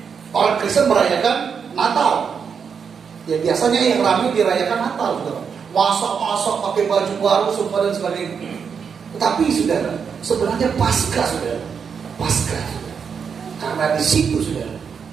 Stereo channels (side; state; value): left; quieter; 6.5 dB